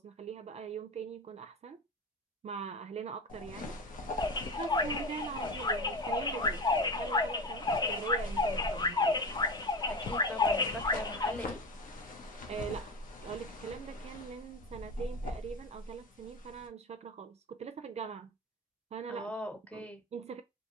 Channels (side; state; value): both; normal; correlation 0.25